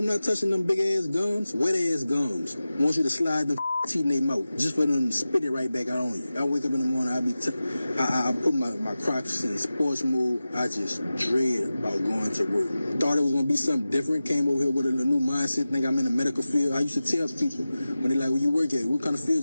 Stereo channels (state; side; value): inverted; both; correlation -0.95